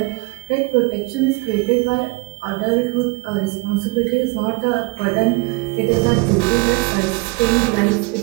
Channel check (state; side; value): quieter; left; 26.1 dB